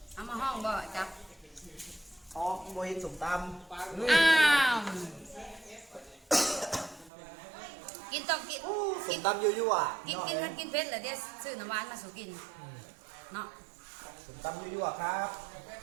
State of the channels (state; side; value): drops out; left; at 7.1 s